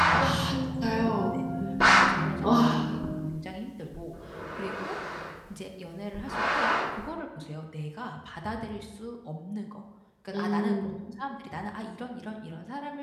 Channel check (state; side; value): identical; both; correlation 1.00